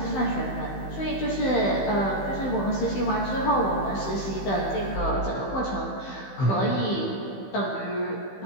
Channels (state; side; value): late; right; 15 ms